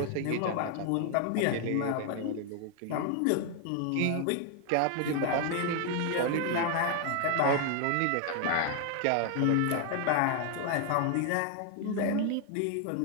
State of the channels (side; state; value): both; different; correlation 0.01